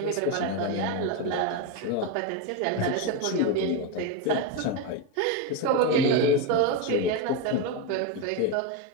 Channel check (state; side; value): different; both; correlation 0.03